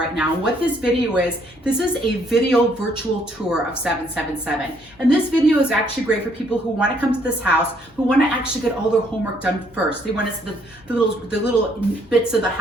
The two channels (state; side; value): noise; left; hum, 29 dB below the sound